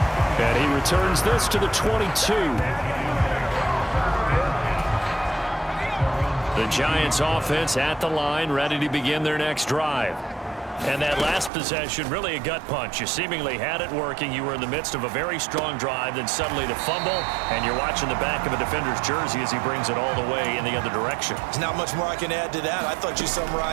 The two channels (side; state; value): left; drops out; at 11.5 s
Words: And he returns this to the 22. The Giants offense at the line, ready to begin their next drive. And that last possession, really a gut punch. You seemingly had it working. You were in the midst of a very strong drive, then suddenly the fumble, and you're watching the back of a defender's jersey as he brings it all the way in the other direction. There's not much more I can add to that. I thought you